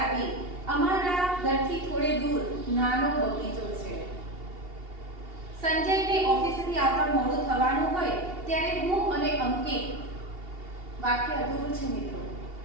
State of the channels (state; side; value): late; left; 2.8 ms